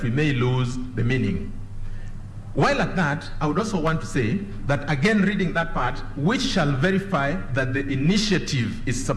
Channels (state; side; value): identical; both; correlation 1.00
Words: we may lose the meaning. While at that, I would also want to say that, again, reading that part, which shall verify that the initiative is